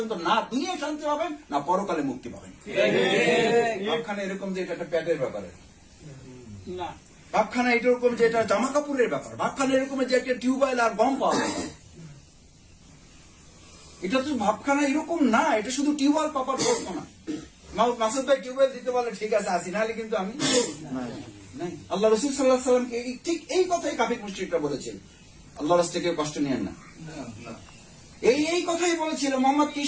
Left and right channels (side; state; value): both; identical; correlation 1.00